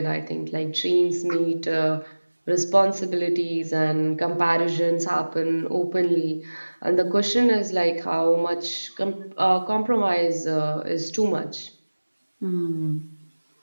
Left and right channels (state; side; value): inverted; both; correlation -1.00